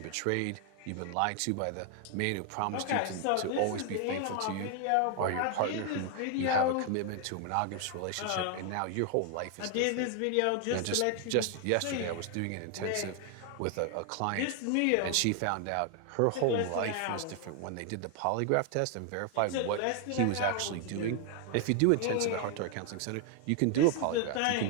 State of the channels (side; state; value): both; different; correlation 0.00